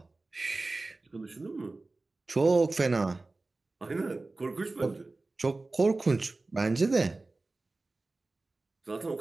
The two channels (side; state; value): left; quieter; 3.3 dB